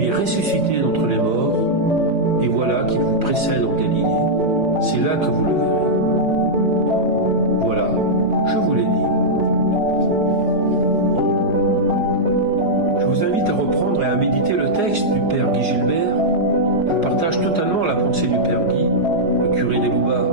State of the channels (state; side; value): late; left; 5.0 ms